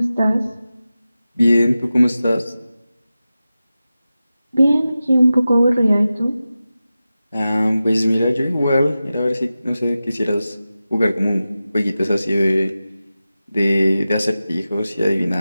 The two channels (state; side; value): inverted; both; correlation -0.94